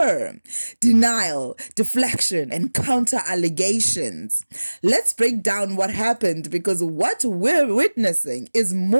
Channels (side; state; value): both; inverted; correlation -1.00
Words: denial, deflection, and counter-allegations. Let's break down what happened, because what we're witnessing is